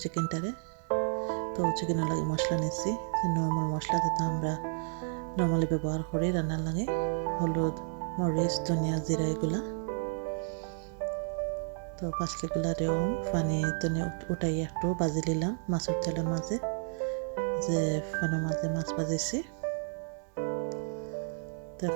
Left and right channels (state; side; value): silent; left; 57 dB below the other